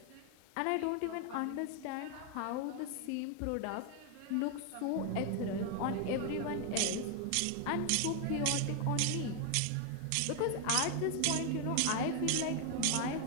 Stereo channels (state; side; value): different; both; correlation 0.00